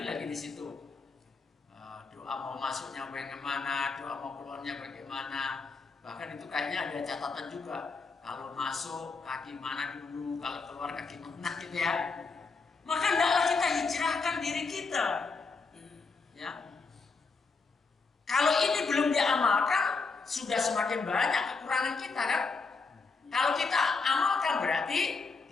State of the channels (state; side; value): quieter; right; 4.4 dB